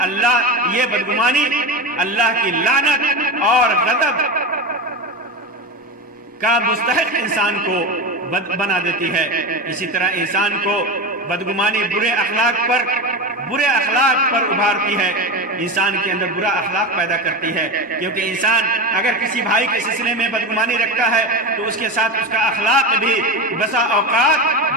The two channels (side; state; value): both; normal; correlation 0.22